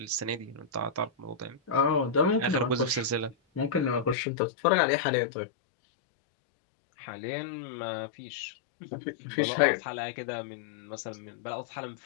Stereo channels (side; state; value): right; drops out; at 4.2 s